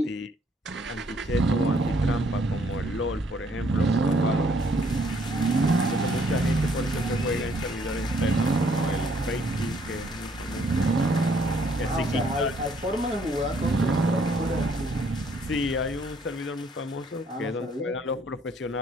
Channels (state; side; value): normal; both; correlation 0.65